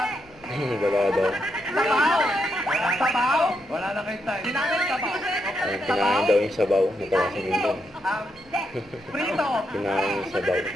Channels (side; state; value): right; noise; rumble, 27 dB below the sound